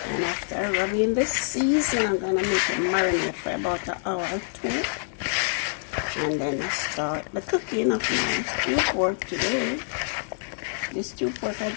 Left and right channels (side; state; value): right; silent; digital silence